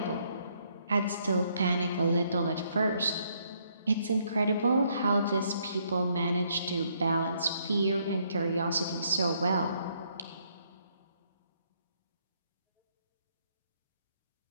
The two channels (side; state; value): both; inverted; correlation -0.71